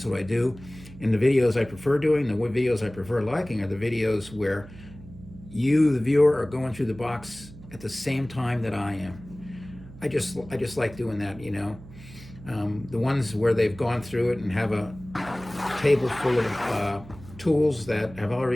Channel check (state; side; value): noise; right; hum, 18 dB below the sound